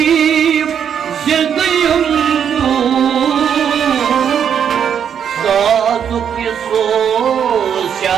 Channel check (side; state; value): left; quieter; 8.2 dB